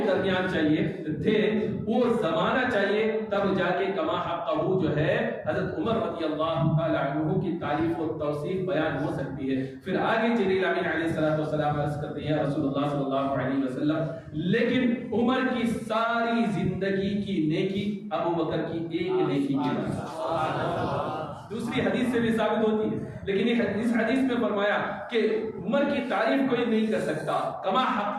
درمیان چاہیے تھے وہ زمانہ چاہیے، تب جا کے کما حقہ جو ہے حضرت عمر رضی اللہ تعالی عنہ کی تعریف و توصیف بیان ہو سکتی ہے. پھر آگے جبریل امین علیہ السلام عرض کرتے ہیں رسول اللہ صلی اللہ علیہ وسلم لیکن عمر کی ساری زندگی کی نیکی ابو بکر کی ایک نیکی کی برابر. دوسری حدیث سے بھی ثابت ہوتی ہے، لیکن اس حدیث میں فرمایا کہ عمر کی تعریف کوئی نہیں کر سکتا، کما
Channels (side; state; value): both; identical; correlation 1.00